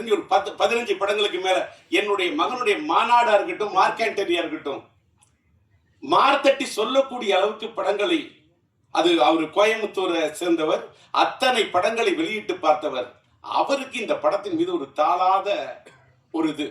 ஒரு 15 படங்களுக்கு மேல, என்னுடைய மகனுடைய மாநாடா இருக்கட்டும், மார்க்கண்டரியா இருக்கட்டும், மார்த்தட்டி சொல்லக்கூடிய அளவுக்கு படங்களை, அது அவர் கோயம்புத்தூரை சேர்ந்தவர், அத்தனை படங்களை வெளியிட்டு பார்த்தவர். அவருக்கு இந்த படத்தின் மீது ஒரு தாளாத ஒரு இது.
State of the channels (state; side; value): identical; both; correlation 1.00